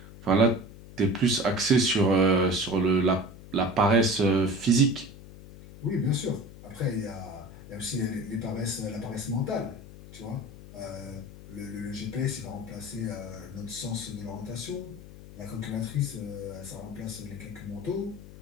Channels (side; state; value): left; noise; hum, 16 dB below the sound